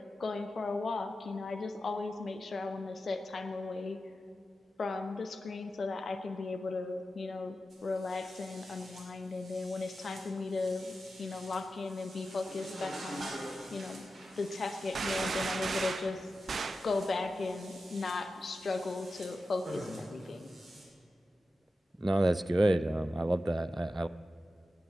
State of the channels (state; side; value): normal; both; correlation 0.92